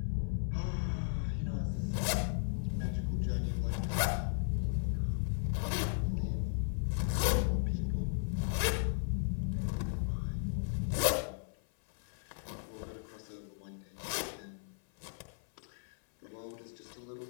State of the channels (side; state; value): right; silent; 54 dB below the other